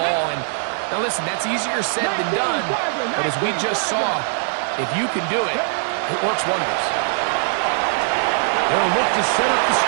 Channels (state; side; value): silent; left; 65 dB below the other